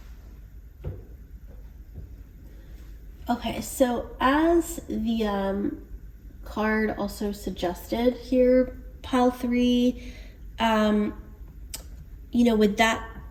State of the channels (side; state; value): both; identical; correlation 1.00